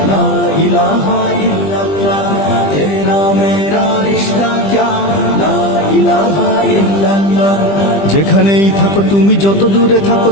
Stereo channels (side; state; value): right; late; 20 ms